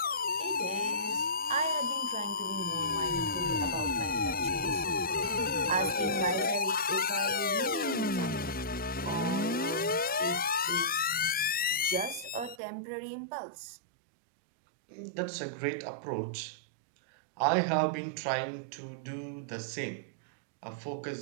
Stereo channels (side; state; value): left; drops out; at 12.6 s